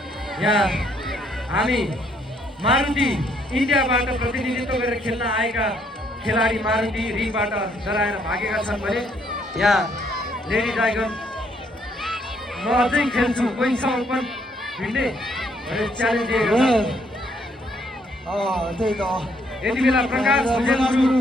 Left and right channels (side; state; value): both; normal; correlation 0.69